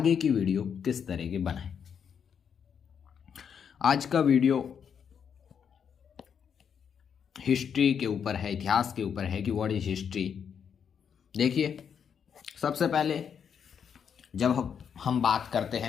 की वीडियो किस तरह की बनाएं। आज का वीडियो हिस्ट्री के ऊपर है, इतिहास के ऊपर है कि व्हाट इज हिस्ट्री। देखिए, सबसे पहले जब हम बात करते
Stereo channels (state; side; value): quieter; right; 7.4 dB